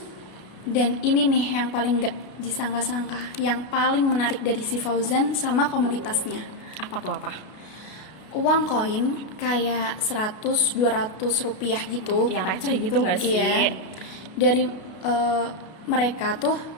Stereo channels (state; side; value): late; right; 33 ms